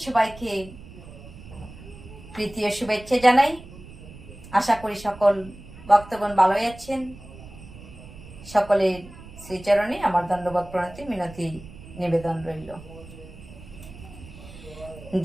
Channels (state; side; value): noise; right; rumble, 17 dB below the sound